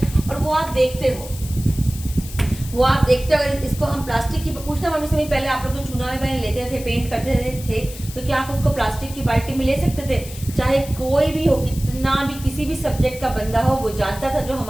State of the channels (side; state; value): left; noise; hiss, 15 dB below the sound